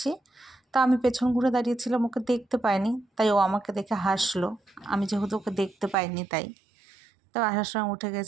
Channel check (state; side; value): drops out; left; at 6.0 s